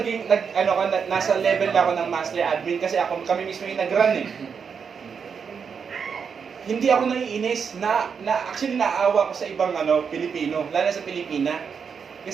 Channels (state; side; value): quieter; left; 6.4 dB